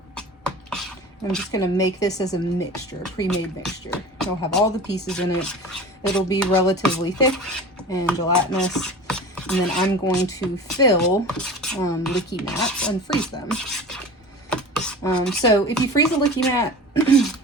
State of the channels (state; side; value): normal; both; correlation 0.36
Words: I'm just going to make this as a mixture, a pre-made mixture. It'll have all the pieces in it. It'll be relatively thick and gelatinous. And then I'm going to fill Likimats and freeze them. So if you freeze a Likimat,